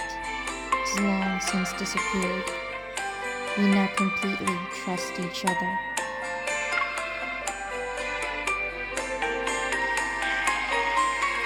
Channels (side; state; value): both; identical; correlation 1.00